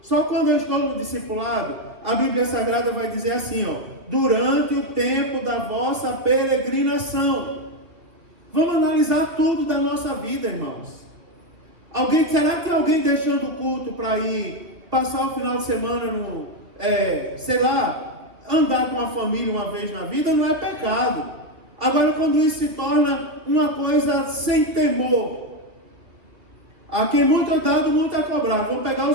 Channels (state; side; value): late; left; 2.5 ms